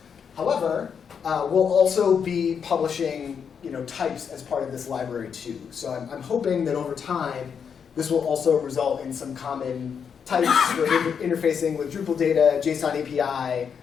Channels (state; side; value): quieter; right; 7.0 dB